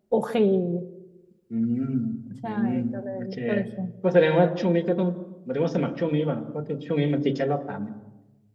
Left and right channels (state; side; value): identical; both; correlation 1.00